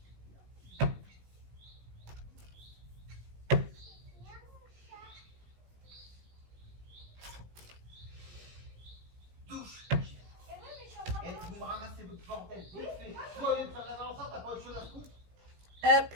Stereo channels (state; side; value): late; left; 17 ms